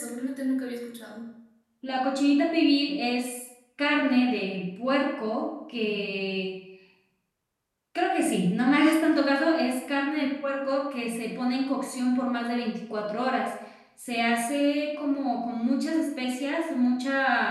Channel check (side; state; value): both; identical; correlation 1.00